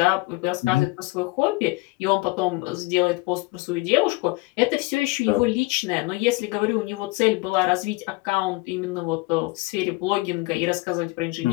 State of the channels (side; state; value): right; quieter; 23.6 dB